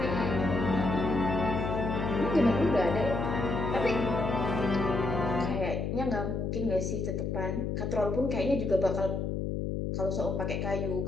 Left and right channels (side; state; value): left; noise; hum, 1 dB below the sound